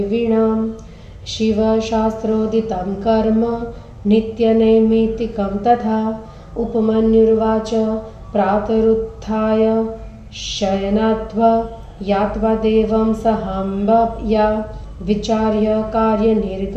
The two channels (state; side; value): identical; both; correlation 1.00